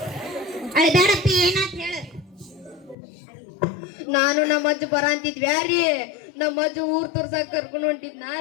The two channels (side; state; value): right; drops out; at 3.0 s